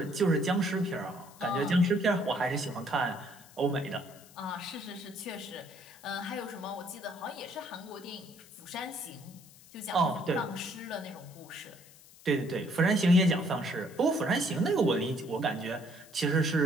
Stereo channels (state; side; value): noise; left; hiss, 23 dB below the sound